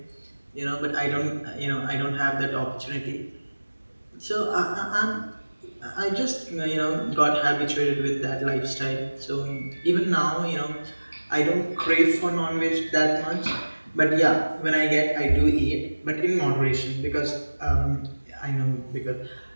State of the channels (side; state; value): both; inverted; correlation -1.00